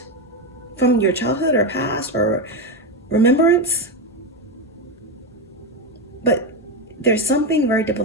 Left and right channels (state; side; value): normal; both; correlation 0.12